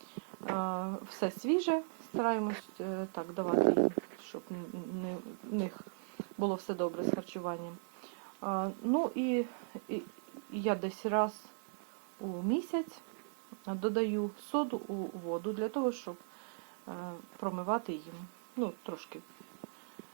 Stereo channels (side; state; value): left; silent; digital silence